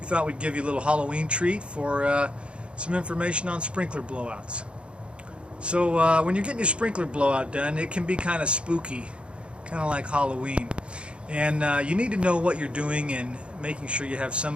thought we'd give you a little Halloween treat for some information on sprinkler blowouts. So when you're getting your sprinkler blowout done, it can be kind of spooky, kind of like Halloween, and you need to know what you're doing and making sure you have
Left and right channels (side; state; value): left; late; 0.057 ms